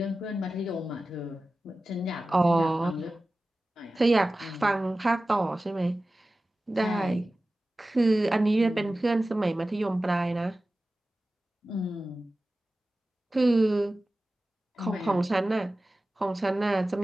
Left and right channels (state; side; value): normal; both; correlation 0.95